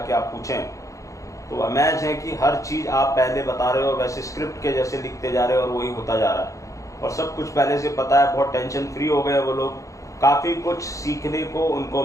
आप पूछें तो अमेज है कि हर चीज़ आप पहले बता रहे हो, वैसे स्क्रिप्ट के जैसे लिखते जा रहे हो और वही होता जा रहा है। और सब कुछ पहले से पता है, बहुत टेंशन फ्री हो गए वो लोग। काफ़ी कुछ सीखने को उनको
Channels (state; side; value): late; right; 0.15 ms